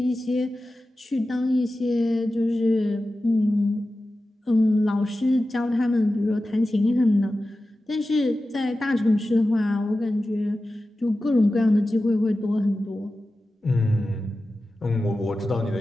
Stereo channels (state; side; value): normal; both; correlation 0.94